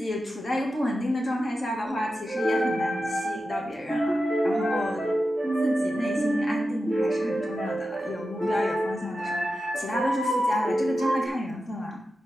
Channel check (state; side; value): normal; both; correlation 0.91